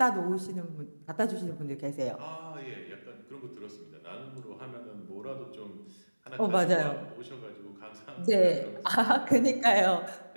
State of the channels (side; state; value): both; inverted; correlation -1.00